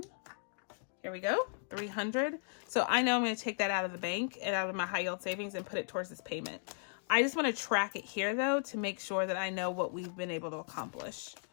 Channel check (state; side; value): silent; right; digital silence